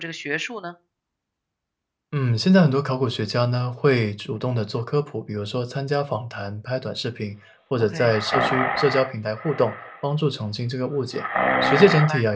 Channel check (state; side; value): identical; both; correlation 1.00